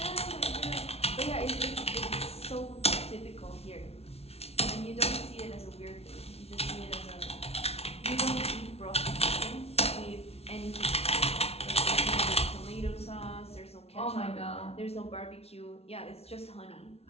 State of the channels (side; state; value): right; late; 0.30 ms